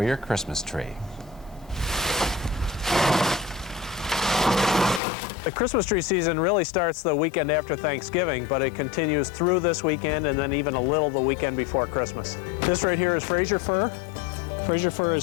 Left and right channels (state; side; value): drops out; right; at 5.0 s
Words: your Christmas tree. The Christmas tree season really starts the weekend after Thanksgiving, but it continues through this weekend and then even a little the weekend before Christmas. This right here is Fraser fir. Fraser fir